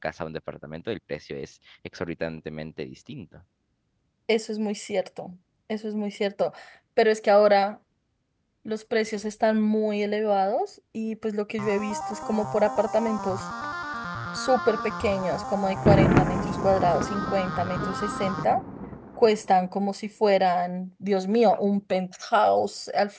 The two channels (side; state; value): both; identical; correlation 1.00